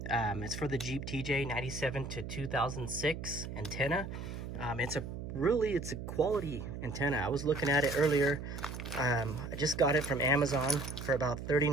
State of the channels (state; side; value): noise; right; hum, 7 dB below the sound